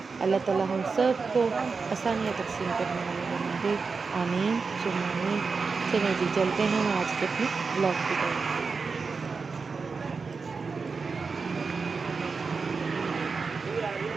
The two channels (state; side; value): quieter; left; 4.7 dB